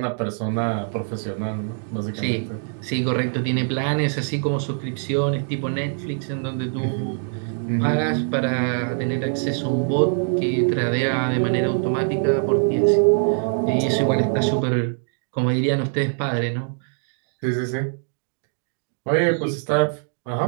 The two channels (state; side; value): silent; left; digital silence